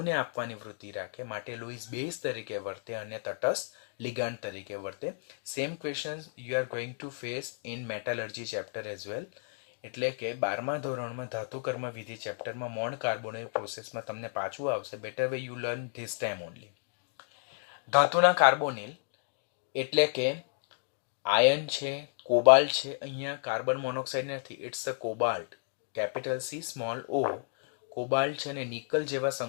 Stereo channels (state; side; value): silent; right; digital silence